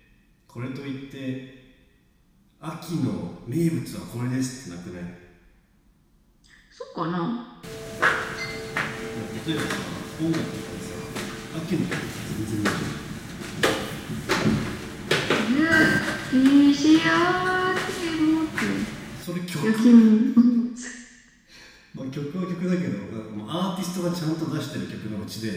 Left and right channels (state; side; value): identical; both; correlation 1.00